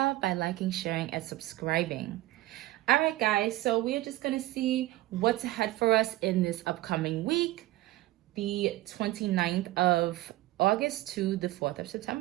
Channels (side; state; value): left; quieter; 17.0 dB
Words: by liking, sharing, and subscribing. All right, guys, so we're just going to see what's ahead for us in this upcoming week, the 29th of August to the 4th of